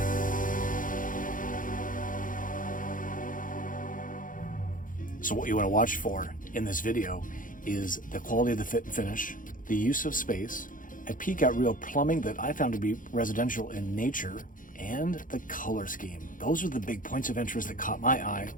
So what you want to watch for in this video is the quality of the fit and finish, the use of space, a peek at real plumbing that I found to be residential in nature, and the color scheme. Those are the big points of interest that caught my eye.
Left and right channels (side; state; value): right; late; 0.39 ms